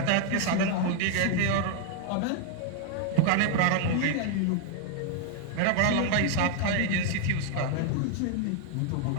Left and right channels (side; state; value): both; different; correlation 0.00